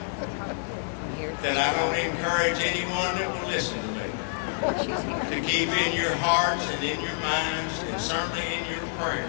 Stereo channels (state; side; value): silent; right; digital silence